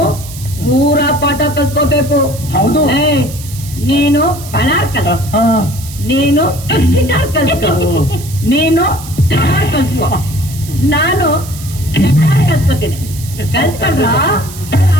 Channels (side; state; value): right; noise; hiss, 15 dB below the sound